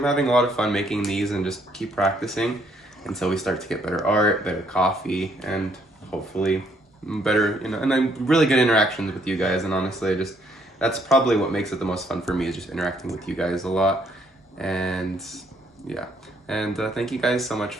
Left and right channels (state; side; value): normal; both; correlation 0.69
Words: having a lot of fun making these, and just keep practicing until we start to get better art, better coffee, and hopefully better, you know, and I'm really good interactions with you guys. And honestly, just that's probably what makes it the most fun for me, is just interacting with you guys a lot. And yeah, and thank you guys so much